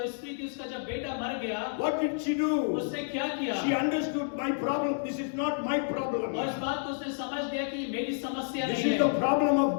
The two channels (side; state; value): right; silent; 57 dB below the other